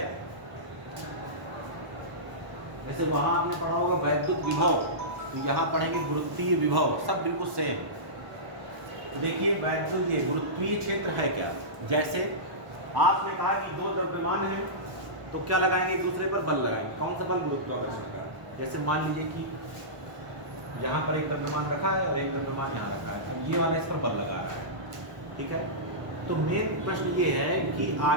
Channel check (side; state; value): left; late; 1.0 ms